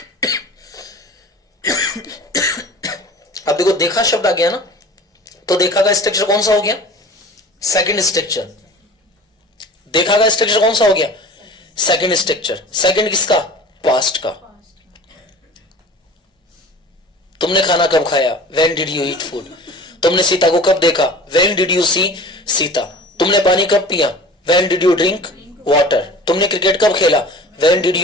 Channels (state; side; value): normal; both; correlation 0.41